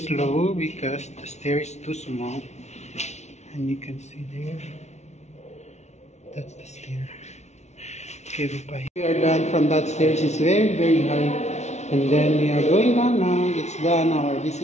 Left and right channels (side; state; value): right; late; 0.32 ms